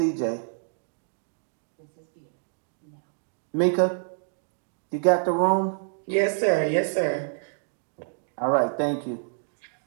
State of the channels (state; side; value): silent; left; digital silence